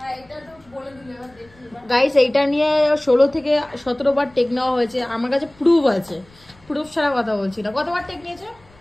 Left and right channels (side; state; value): left; noise; rumble, 28 dB below the sound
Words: এটা তো বলে দিলে, এবার দেখি এবার। গাইস এইটা নিয়ে 16 থেকে 17 বার টেক নেওয়া হয়েছে, আমার কাছে প্রুফ আছে। প্রুফ ছাড়া কথা বলছি না। কতবার টেক নিয়েছে?